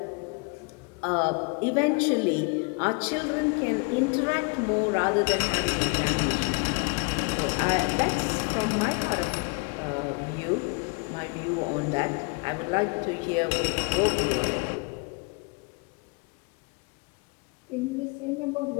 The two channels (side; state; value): right; quieter; 33.2 dB